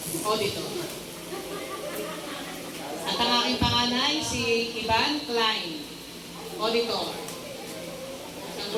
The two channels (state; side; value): identical; both; correlation 1.00